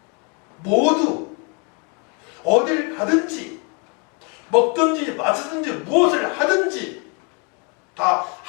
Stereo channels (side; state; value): right; quieter; 34.5 dB